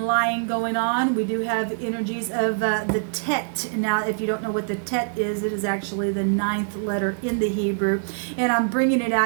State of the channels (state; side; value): silent; left; digital silence